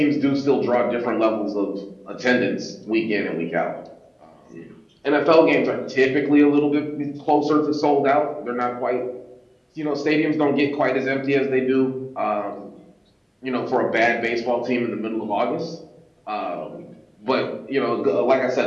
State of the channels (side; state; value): both; identical; correlation 1.00